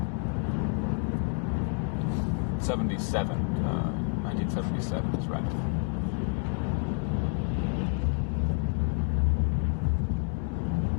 1977 is right.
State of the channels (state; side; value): quieter; right; 35.9 dB